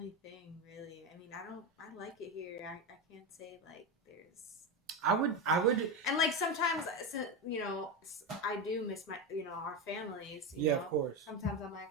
thing really. I mean, I like it here. I can't say like there's. I would. And like sometimes, I do miss my our families. Of course. Sometimes I'm like,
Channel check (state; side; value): normal; both; correlation 0.15